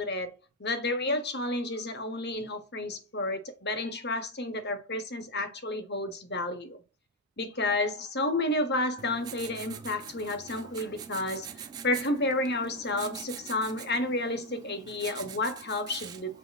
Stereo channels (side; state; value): both; normal; correlation 0.04